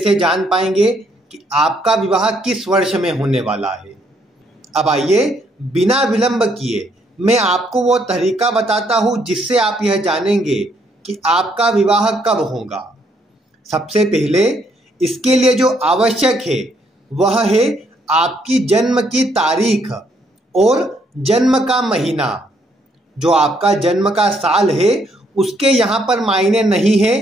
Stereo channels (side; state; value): both; normal; correlation 0.71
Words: जान पाएंगे कि आपका विवाह किस वर्ष में होने वाला है। अब आइए बिना विलंब किए मैं आपको वो तरीका बताता हूँ जिससे आप यह जानेंगे कि आपका विवाह कब होगा। सबसे पहले इसके लिए जो आवश्यक है वह है आपकी जन्म की तारीख और जन्म का महीना। जो आपका जन्म का साल है उसके यहाँ पर मायने नहीं है।